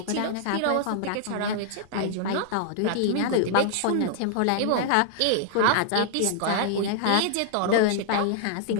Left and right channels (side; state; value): both; different; correlation -0.01